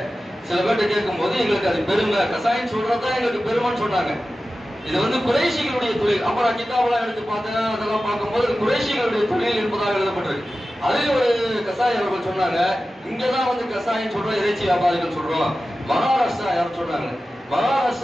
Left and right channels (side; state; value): both; normal; correlation 0.94